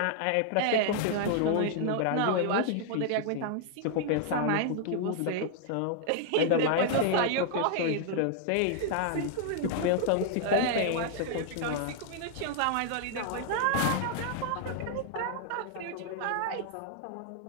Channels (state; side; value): different; both; correlation -0.01